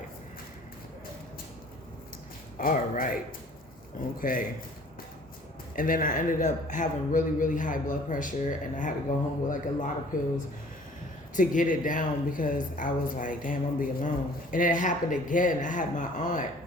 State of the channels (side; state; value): both; normal; correlation 0.52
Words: all right, okay. And then I ended up having really, really high blood pressure, and I had to go home with like a lot of pills to get it down because I was like, damn, I'm gonna be alone. And it happened again. I had my aunt,